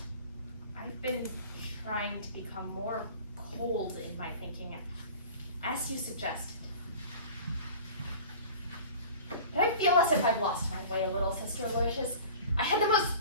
I've been trying to become more cold in my thinking, as you suggested. But I feel as if I've lost my way a little, Sister Aloysius. I had the most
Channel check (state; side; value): inverted; both; correlation -0.41